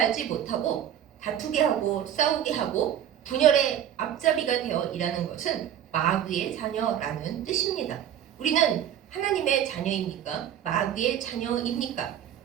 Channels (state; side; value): quieter; left; 10.2 dB